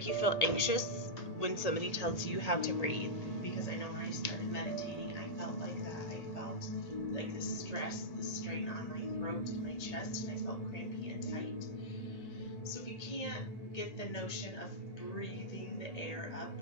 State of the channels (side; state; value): right; late; 1.8 ms